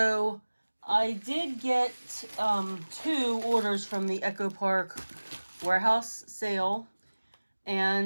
I did get two orders from the Echo Park warehouse sale,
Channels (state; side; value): inverted; both; correlation -1.00